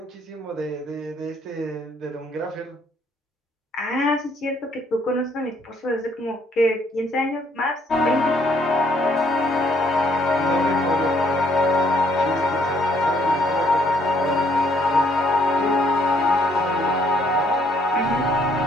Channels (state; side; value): normal; both; correlation 0.67